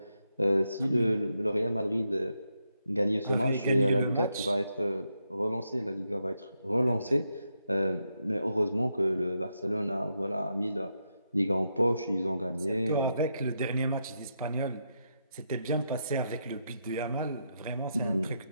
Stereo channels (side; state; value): both; inverted; correlation -0.82